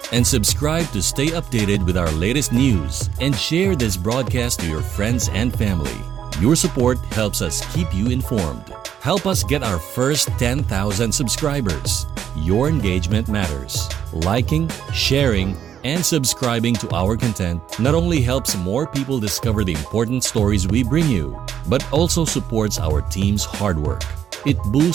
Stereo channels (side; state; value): left; quieter; 9.2 dB